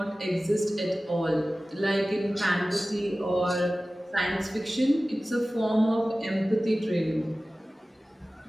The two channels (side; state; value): both; normal; correlation 0.97